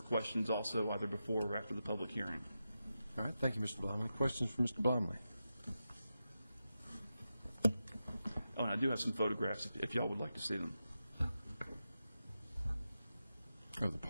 questions also either before or after the public hearing. All right, thank you, Mr. Blomley. Questions for Mr. Blomley? Oh, and I do have some photographs if y'all would like to see them. Oh, the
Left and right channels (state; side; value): inverted; both; correlation -0.90